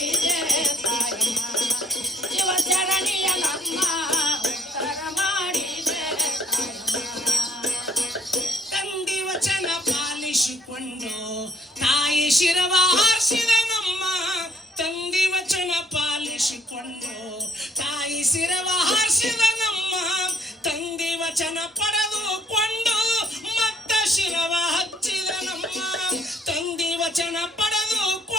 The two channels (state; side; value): normal; both; correlation 0.62